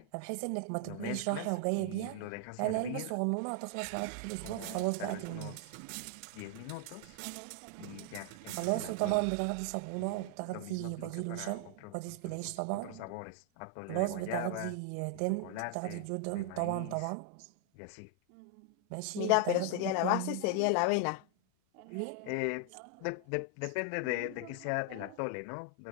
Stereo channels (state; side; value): different; both; correlation 0.00